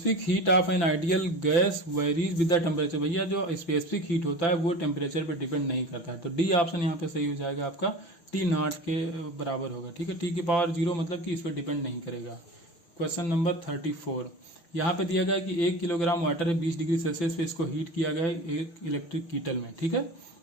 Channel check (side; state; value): right; late; 5.9 ms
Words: heat of an ideal gas varies with the temperature, भैया जो स्पेसिफिक हीट होता है वो टेम्परेचर पे डिपेंड नहीं करता है, तो डी ऑप्शन यहाँ पे सही हो जाएगा आपका, T0 के बराबर होगा, ठीक है, T⁻0 मतलब कि इस पर डिपेंड नहीं करेगा। क्वेश्चन नंबर 34, यहाँ पे दिया गया है कि 1 किलोग्राम वाटर है 20 डिग्री सेल्सियस पे इसको हीट किया गया है एक इलेक्ट्रिक कीटल में, ठीक है,